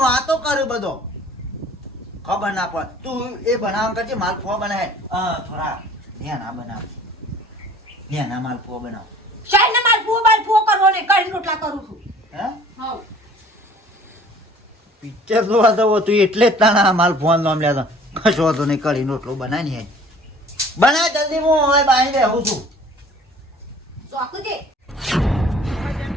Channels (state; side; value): normal; both; correlation 0.51